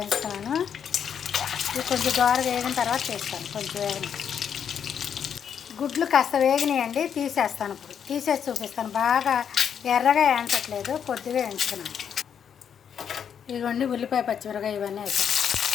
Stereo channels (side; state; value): right; quieter; 8.0 dB